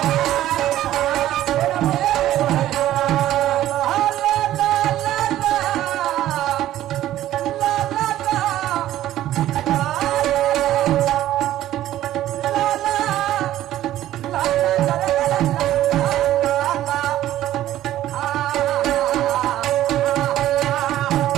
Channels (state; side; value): quieter; left; 13.4 dB